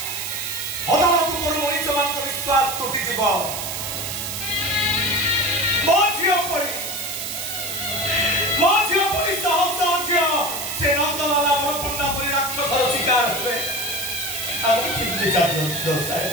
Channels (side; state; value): right; noise; hiss, 5 dB below the sound